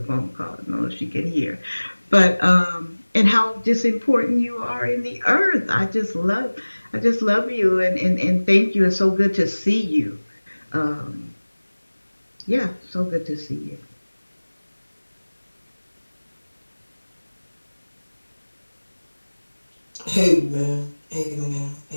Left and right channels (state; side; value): inverted; both; correlation -1.00